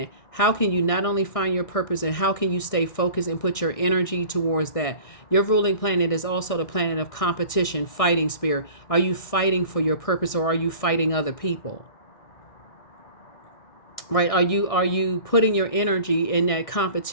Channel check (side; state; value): right; late; 1.6 ms